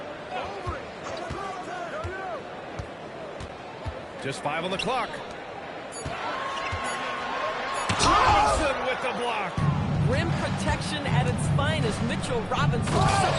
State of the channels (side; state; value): both; identical; correlation 1.00